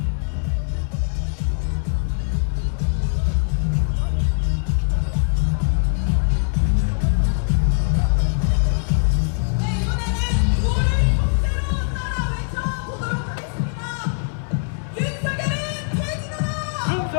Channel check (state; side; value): silent; right; digital silence